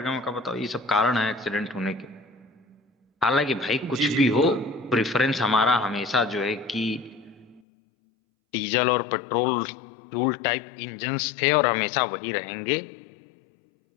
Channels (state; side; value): drops out; right; at 7.6 s